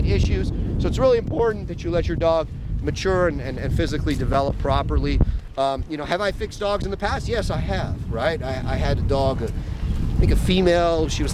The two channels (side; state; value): both; identical; correlation 1.00